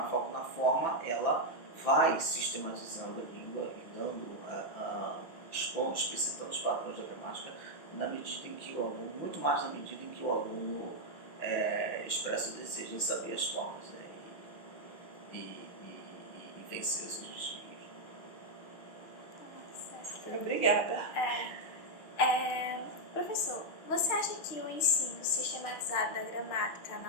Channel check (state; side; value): late; right; 6.0 ms